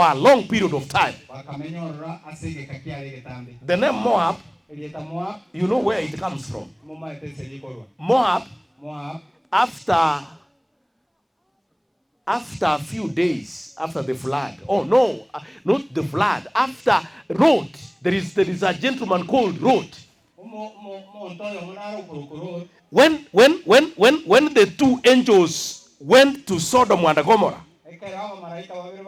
a long period of time. The name Moab, you know where it comes from. Moab, after a few days after the flood. Oh no, not the flood. After Lot, there is a gentleman called Lot. When the two angels went to Sodom and Gomorrah,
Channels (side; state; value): both; identical; correlation 1.00